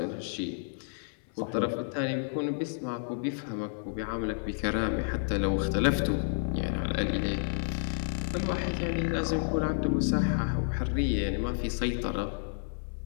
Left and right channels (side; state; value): right; silent; digital silence